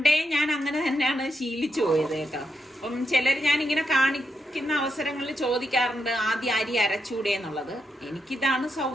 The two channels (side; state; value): both; normal; correlation 0.82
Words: ഞാൻ അങ്ങനെ തന്നെയാണ് ശീലിച്ചു പോയത് കേട്ടോ. അപ്പം ചിലർ ഞാൻ ഇങ്ങനെ കാണിക്കുന്ന അവസരങ്ങളിൽ ചോദിക്കാറുണ്ട് ആദ്യം അരി അരച്ചൂടെ എന്നുള്ളത്. എനിക്കിതാണ്